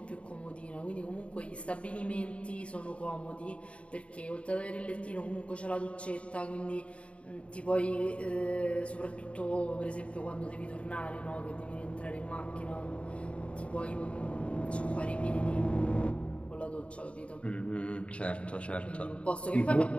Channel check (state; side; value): late; right; 0.061 ms